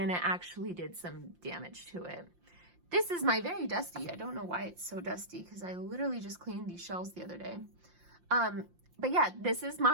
and it actually did some damage to it. This is my very dusty. I don't know why it's so dusty because I literally just cleaned these shelves the other day. But yeah, this is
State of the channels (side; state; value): left; late; 5.7 ms